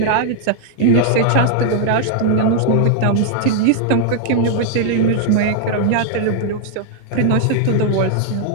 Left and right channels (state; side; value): different; both; correlation -0.01